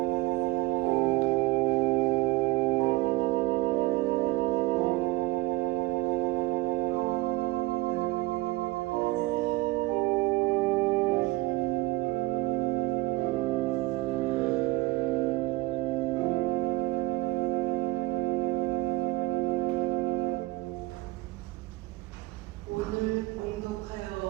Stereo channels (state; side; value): quieter; left; 20.2 dB